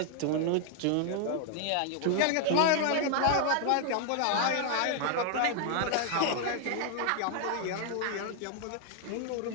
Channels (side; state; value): both; different; correlation 0.00